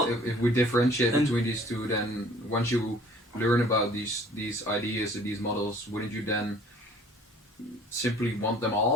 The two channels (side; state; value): both; normal; correlation 0.53